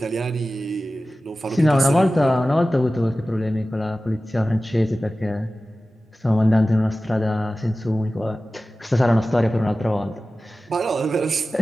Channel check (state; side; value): normal; both; correlation 0.95